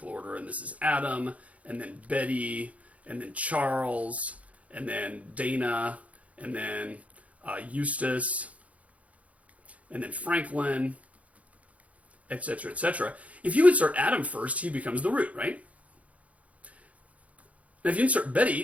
order, and this is Adam, and then Betty, and then Charles, and then Dana, and then Eustace, and then Franklin, etc., etc. If you insert Adam first, he becomes the root, right? Now, if you insert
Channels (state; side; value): late; left; 0.067 ms